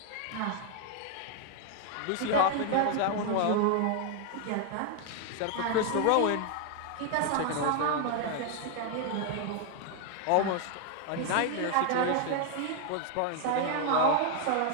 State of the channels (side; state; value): both; different; correlation 0.00